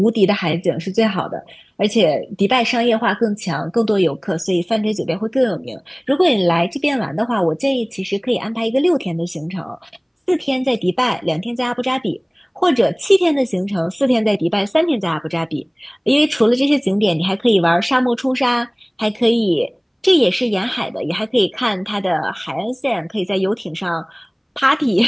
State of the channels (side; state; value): both; identical; correlation 1.00